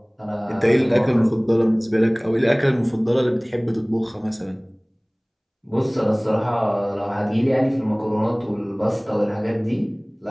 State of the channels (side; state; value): both; identical; correlation 1.00